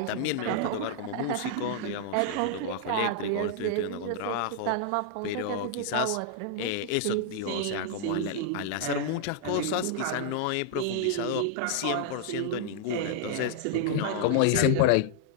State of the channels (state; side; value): different; both; correlation -0.01